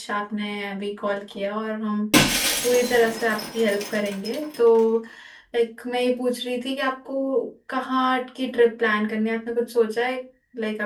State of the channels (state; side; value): identical; both; correlation 1.00